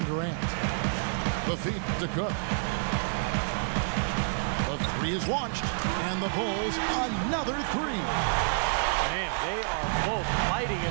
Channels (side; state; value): left; silent; 59 dB below the other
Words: Durant. The feed to Cook. The three is launched, and the Bulls another three. Man, they are both lighting